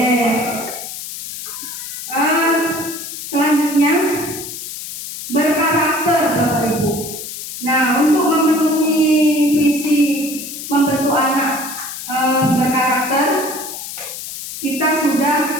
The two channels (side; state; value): left; noise; hiss, 9 dB below the sound